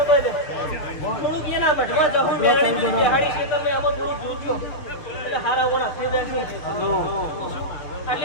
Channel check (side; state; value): right; late; 6.8 ms